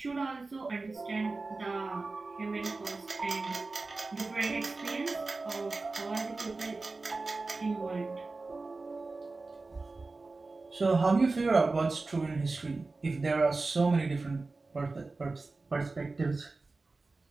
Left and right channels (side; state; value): left; quieter; 3.6 dB